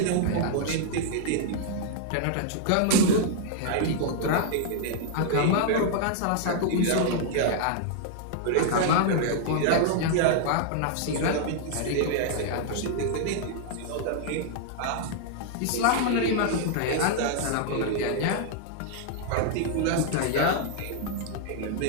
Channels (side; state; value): both; different; correlation -0.01